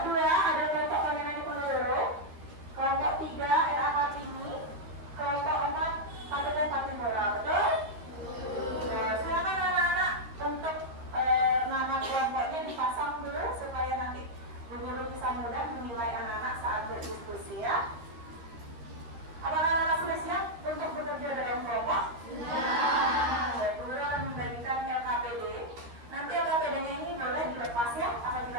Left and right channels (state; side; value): late; left; 13 ms